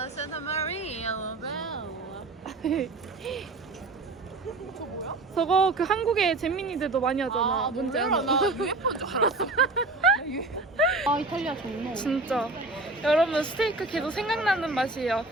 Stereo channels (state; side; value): quieter; left; 3.2 dB